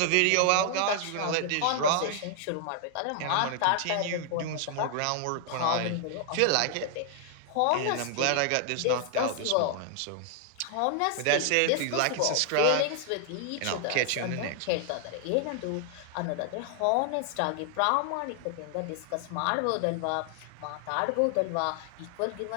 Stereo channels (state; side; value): different; both; correlation 0.00